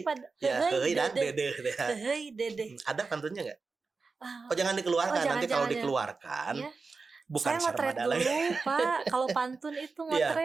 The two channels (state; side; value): quieter; left; 4.3 dB